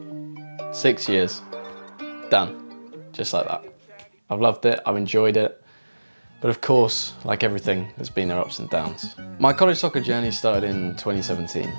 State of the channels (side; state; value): both; inverted; correlation -1.00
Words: Six years. Done. Just like that. I've loved it, I've enjoyed it. But of course, like everything, there's been their ups and downs. My college soccer journey started in 2017.